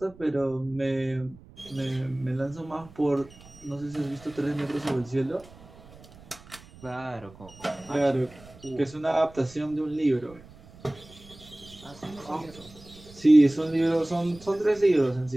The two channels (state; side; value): noise; right; rumble, 21 dB below the sound